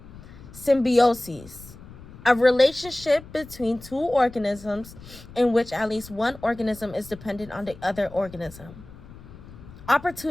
Symbiosis, a relationship between two organisms in which at least one organism is dependent on the other organism.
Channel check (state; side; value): noise; left; rumble, 18 dB below the sound